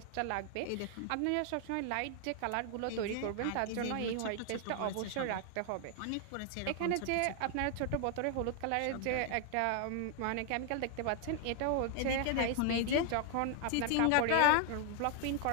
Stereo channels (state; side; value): different; both; correlation 0.00